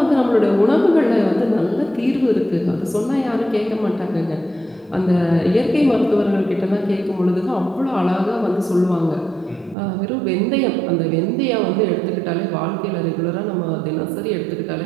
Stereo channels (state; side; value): drops out; left; at 9.8 s